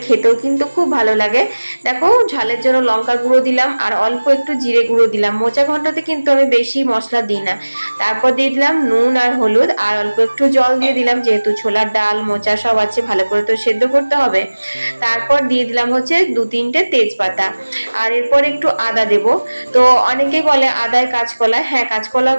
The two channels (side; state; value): both; inverted; correlation -1.00